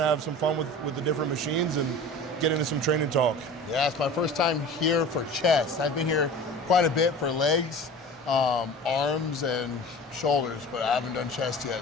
have some fun with the different machines and get into some training talk. Yeah, it's my first time here for chest. I've been here quite a bit for legs, arms, and shoulders, but I haven't done chest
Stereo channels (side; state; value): both; normal; correlation 0.38